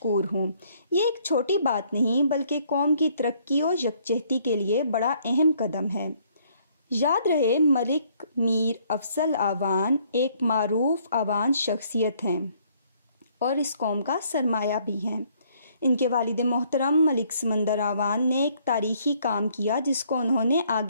हूँ। ये एक छोटी बात नहीं बल्कि कौम की तरक्की और यकजहती के लिए बड़ा अहम कदम है। याद रहे, मलिक मीर अफसल आवान एक मारूफ आवान शख्सियत हैं और इस कौम का सरमाया भी हैं। इनके वालिद मोहतरम मलिक समंदर आवान ने एक तारीखी काम किया जिसको उन्होंने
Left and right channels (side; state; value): both; inverted; correlation -0.65